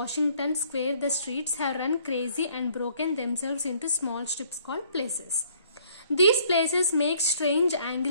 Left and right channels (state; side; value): inverted; both; correlation -0.62